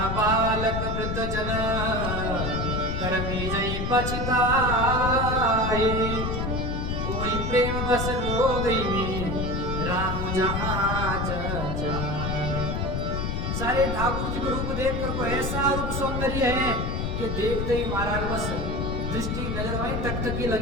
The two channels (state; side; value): noise; left; rumble, 1 dB below the sound